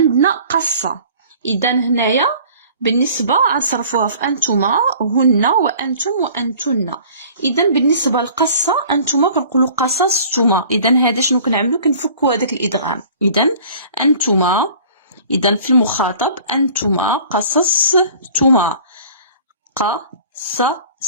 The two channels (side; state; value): both; inverted; correlation -0.48